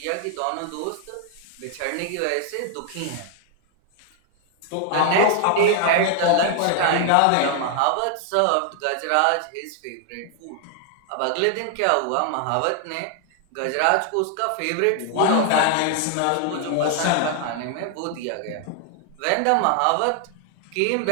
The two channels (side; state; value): both; different; correlation 0.00